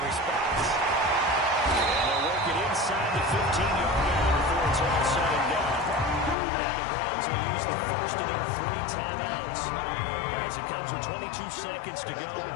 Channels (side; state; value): right; drops out; at 6.4 s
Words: response. And they'll work it inside the 15-yard line before it's all said and done. Now the Browns will use the first of their 3 timeouts as it comes with 22 seconds to go